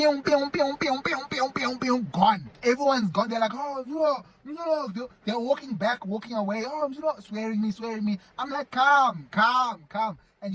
pew, pew, pew, pew, pew, pew, pew, gone. Everyone's gone. They're like, oh, they're walking back, walking away. Oh, swearing me. I'm like, calm. And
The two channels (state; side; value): identical; both; correlation 1.00